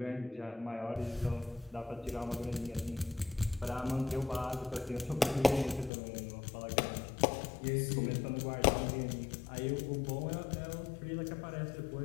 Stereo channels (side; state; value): right; drops out; at 5.9 s